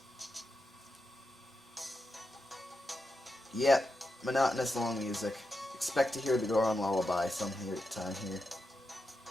Yep, monotonous long music. Expect to hear the Goron lullaby some time here.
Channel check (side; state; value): both; normal; correlation 0.87